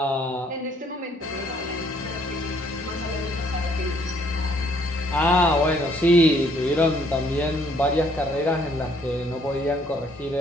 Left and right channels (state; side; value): normal; both; correlation 0.65